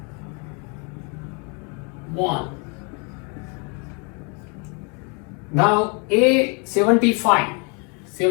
1. Now A 75,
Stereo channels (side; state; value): right; quieter; 34.5 dB